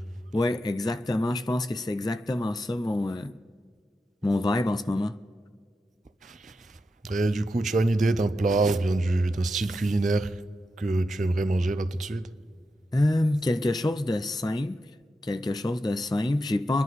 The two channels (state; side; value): normal; both; correlation 0.87